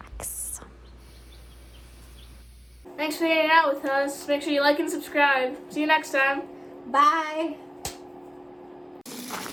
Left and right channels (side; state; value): both; identical; correlation 1.00